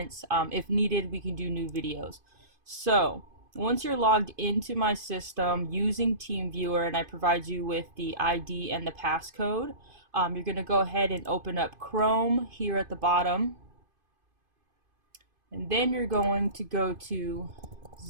If needed, we can do new videos. So once you're logged into my system using TeamViewer and I provide you with the ID and the passcode, you're going to go ahead and open up Chrome here at the bottom, and then you're going to go to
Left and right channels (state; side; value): late; left; 2.5 ms